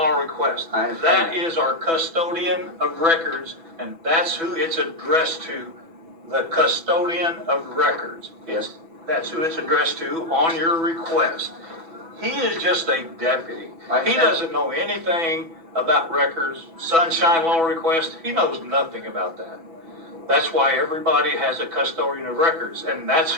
Request. I understand That that. is our custodian of records, and that's who it's addressed to, the custodian of records. Yes. That's who it's addressed to on your request. He is just a deputy. I He understand. doesn't know anything about records, Sunshine Law Request. He knows nothing about that. That's why everybody has a custodian of records, and that's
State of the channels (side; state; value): left; late; 6.1 ms